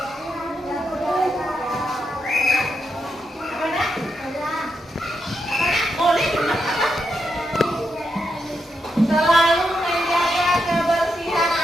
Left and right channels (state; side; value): normal; both; correlation 0.83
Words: Apa nak? Boleh juga apa? Selalu menjaga kebersihan